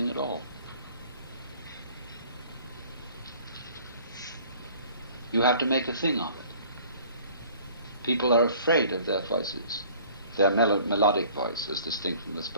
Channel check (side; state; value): both; inverted; correlation -0.52